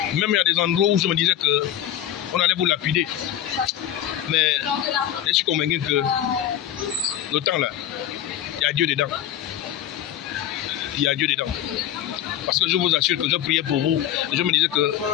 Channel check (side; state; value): right; quieter; 11.7 dB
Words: Même il y a des endroits où je me disais qu'on allait vous lapider. Mais je suis convaincu que le temps là, il y a Dieu dedans. Il y a Dieu dedans. Parce que je vous assure que je priais pour vous. Et je me disais